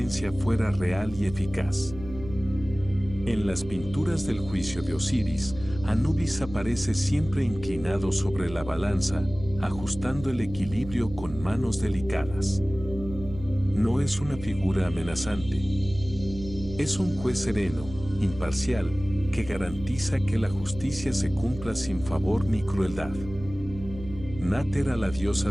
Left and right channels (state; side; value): noise; right; hum, 13 dB below the sound